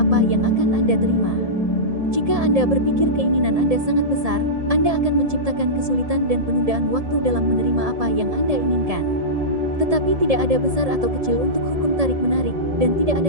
apa yang akan Anda terima. Jika Anda berpikir keinginan Anda sangat besar, Anda akan menciptakan kesulitan dan penundaan waktu dalam menerima apa yang Anda inginkan. Tetapi tidak ada besar atau kecil untuk hukum tarik-menarik, dan tidak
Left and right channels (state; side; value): late; left; 1.7 ms